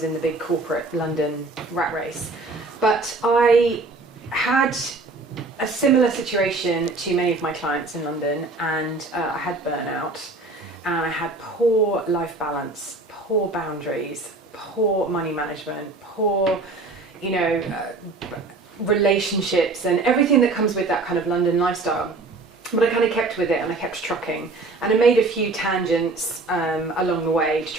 in the big corporate London rat race. But I had a similar situation to many of my clients in London, and I had burnout, and I had poor life balance, poor boundaries, poor money management, poor, relationships, and everything that comes with that kind of London lifestyle. But I kind of kept with it, and I kept trucking, and I made a few tangents along the way to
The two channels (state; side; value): quieter; left; 3.4 dB